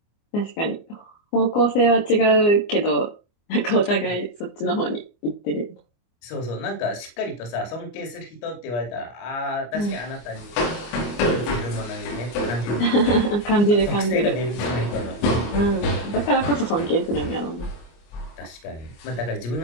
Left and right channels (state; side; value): late; right; 25 ms